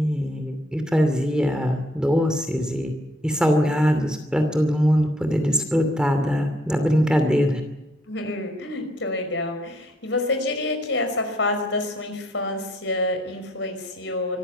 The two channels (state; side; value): normal; both; correlation 0.67